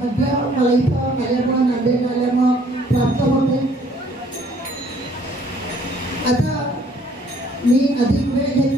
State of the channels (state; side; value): normal; both; correlation 0.60